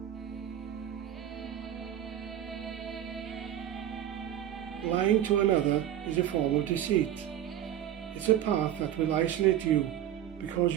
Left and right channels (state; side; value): quieter; left; 11.1 dB